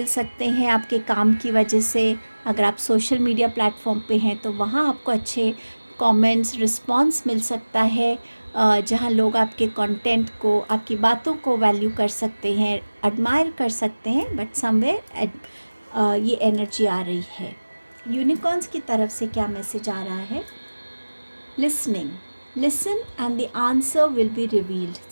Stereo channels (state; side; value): inverted; both; correlation -1.00